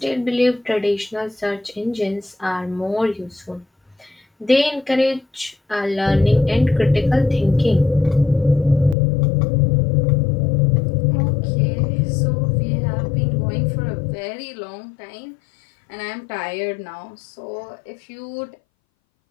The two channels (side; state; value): right; drops out; at 9.0 s